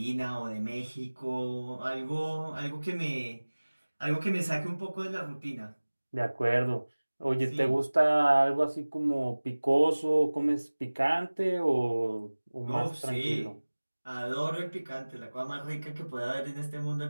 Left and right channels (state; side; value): inverted; both; correlation -1.00